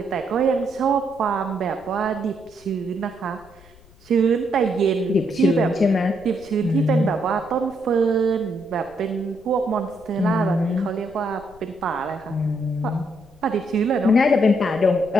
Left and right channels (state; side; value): noise; left; rumble, 25 dB below the sound